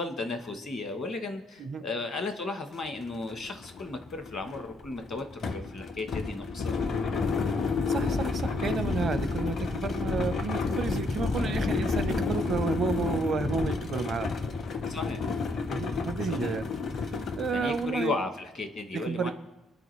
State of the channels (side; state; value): both; normal; correlation 0.70